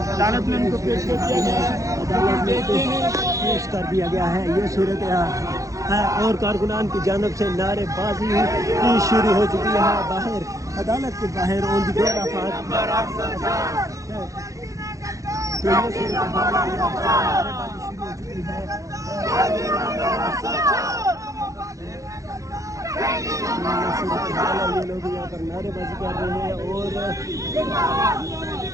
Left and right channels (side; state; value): left; late; 0.16 ms